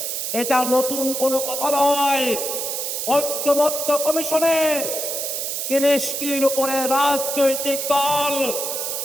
এটা নতুন কোনো কথা নয়। ঐক্যমত্য কমিশনে ৩০টির উপরে রাজনৈতিক দল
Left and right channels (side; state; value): right; noise; hiss, 3 dB below the sound